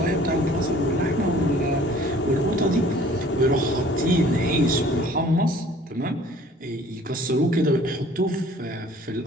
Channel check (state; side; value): normal; both; correlation 0.52